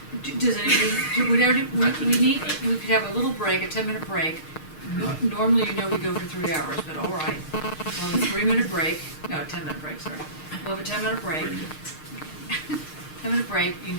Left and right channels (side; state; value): right; late; 6.5 ms